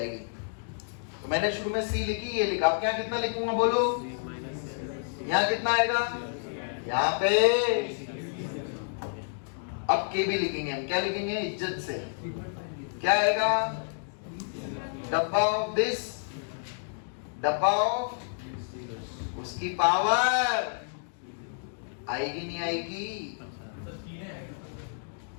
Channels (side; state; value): right; silent; digital silence